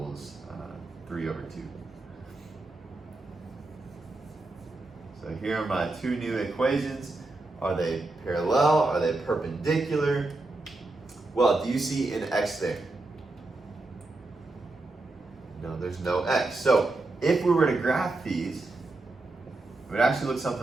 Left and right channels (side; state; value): left; quieter; 3.1 dB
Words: 3 over 2. So here are my 2 new equations. Are they parallel? Are they perpendicular? Well, do you see an x there? No, there's no x. So if we were to graph these, it would actually look